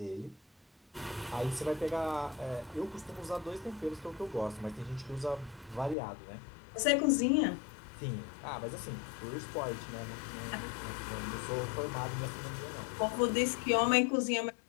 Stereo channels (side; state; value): right; drops out; at 6.0 s